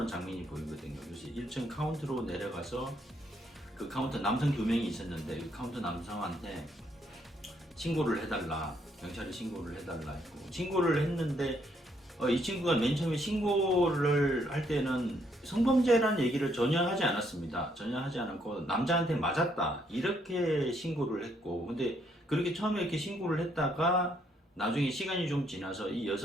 장면이 보이거든요. 그래서 1층 카운터로 내려가서 그 카운터 남성 2명이 있었는데 그 카운터 남성한테 신고를 해달라, 경찰에 신고를 해달라 했고 신고를 했는데 이 친구가 맨 처음에 신고를 할 때는 성범죄라는 얘기를 전혀 하지 않았습니다. 전혀 하지 않았고 남자한테 맞았다 이렇게 신고를 했고 근데 그렇게 처음에 이렇게 신고를 했다가 나중에 시간이 좀 지나서 이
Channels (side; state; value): both; normal; correlation 0.71